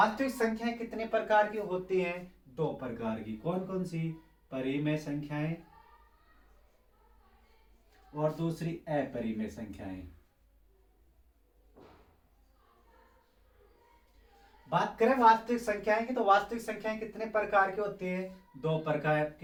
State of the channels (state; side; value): identical; both; correlation 1.00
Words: संख्याएं कितने प्रकार की होती हैं, दो प्रकार की। कौन कौन सी, परिमेय संख्याएं और दूसरी अपरिमेय संख्याएं। बात करें वास्तविक संख्याएं की, तो वास्तविक संख्याएं कितने प्रकार की होती हैं, दो प्रकार